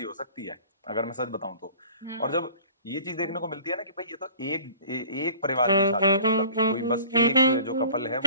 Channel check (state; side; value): inverted; both; correlation -0.49